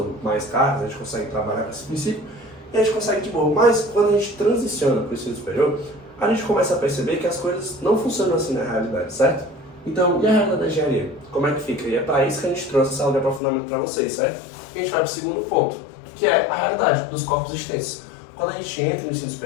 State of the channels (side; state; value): right; drops out; at 13.4 s